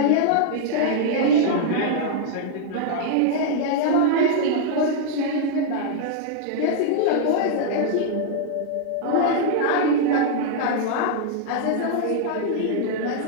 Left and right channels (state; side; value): different; both; correlation -0.01